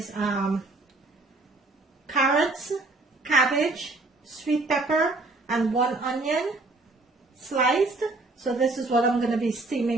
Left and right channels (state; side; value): quieter; left; 3.2 dB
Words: carrots, cabbage, sweet pepper, and 1 onion sliced. So this is what I'm going to be